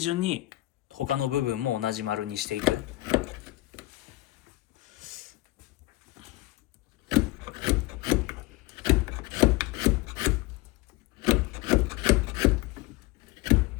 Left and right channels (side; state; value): right; quieter; 19.0 dB